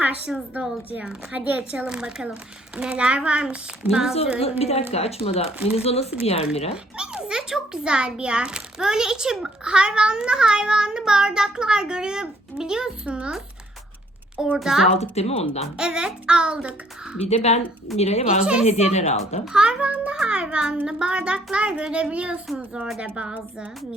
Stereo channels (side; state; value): both; normal; correlation 0.64